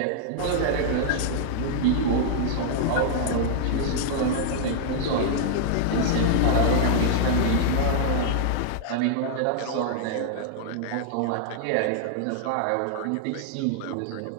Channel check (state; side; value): different; both; correlation -0.01